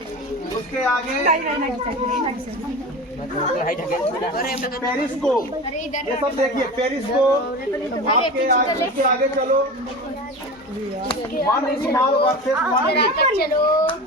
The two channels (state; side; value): normal; both; correlation 0.30